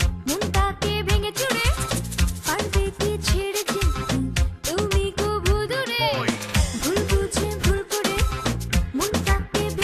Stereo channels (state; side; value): identical; both; correlation 1.00